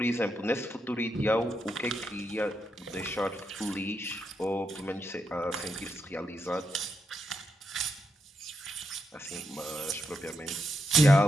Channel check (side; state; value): both; normal; correlation 0.82